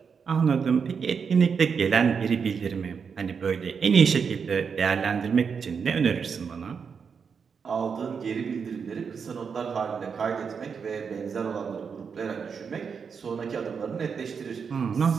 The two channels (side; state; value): left; quieter; 6.1 dB